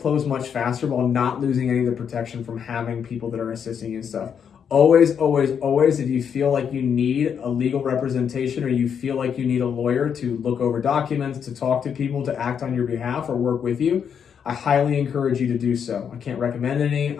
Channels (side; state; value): right; quieter; 7.6 dB